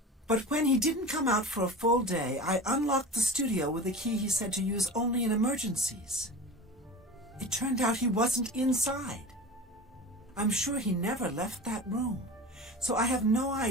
But when he didn't come out for a full day, I unlocked the studio with a key he said to use only in emergencies. It turned out he wasn't inside. I'm sure he never left that room, so I have no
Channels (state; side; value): normal; both; correlation 0.33